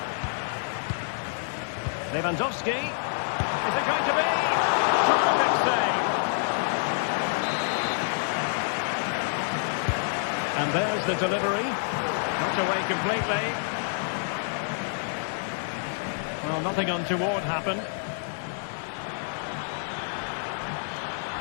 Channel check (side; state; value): right; silent; digital silence